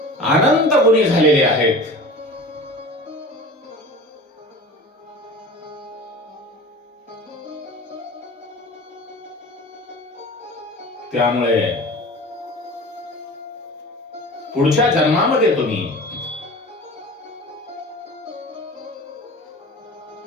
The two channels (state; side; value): normal; both; correlation 0.38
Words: अनंत गुणी झालेले आहेत. त्यामुळे पुढच्या जन्मामध्ये तुम्ही